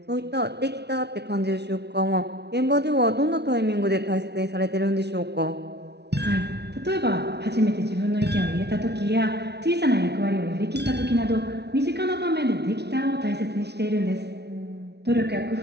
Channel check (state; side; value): late; left; 0.49 ms